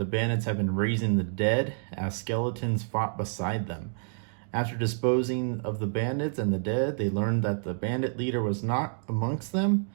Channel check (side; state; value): left; silent; digital silence